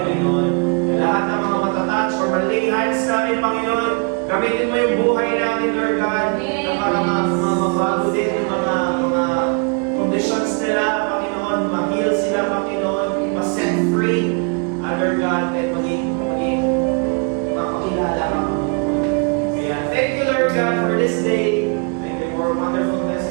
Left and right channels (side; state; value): left; quieter; 36.4 dB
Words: Lahat ng mga matatouch or malay hands namin, Panginoon, gamitin mo yung buhay namin, Lord God, na para mabago din yung mga conditions nila, Panginoon, ma-heal sila, Panginoon, ma-set free, Lord God, at maging makakilala ka, Panginoon. Kaya, thank you, Lord God, for this day. Thank you for a wonderful